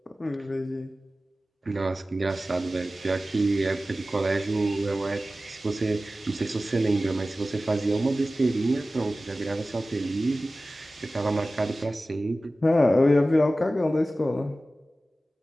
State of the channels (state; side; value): normal; both; correlation 0.96